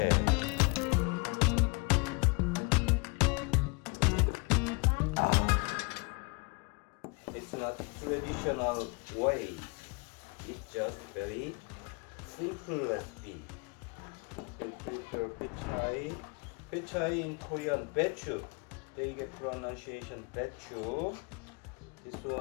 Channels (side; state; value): right; quieter; 31.0 dB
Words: It's not traditional way. It's just very simple recipe. You prepare Baechu. Baechu in Korean, Baechu. They get pronunciation Baechu. This